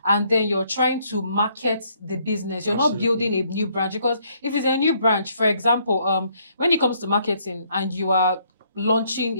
and then you're trying to market the business. You're not building a new branch. Because if it's a new branch, for example, when it comes to marketing and you are launching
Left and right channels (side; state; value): both; inverted; correlation -0.68